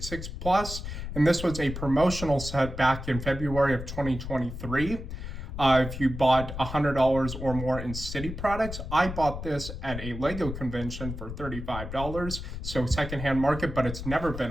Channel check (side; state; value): left; noise; rumble, 8 dB below the sound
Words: and this was a promotional set back in February of 2023. If you bought $100 or more in City products, I bought this at a Lego convention for $35, so secondhand market, but it's never been